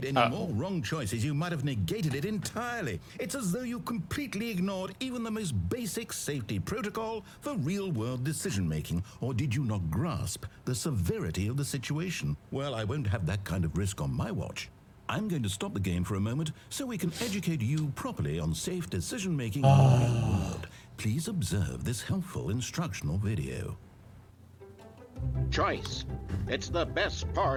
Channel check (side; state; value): both; identical; correlation 1.00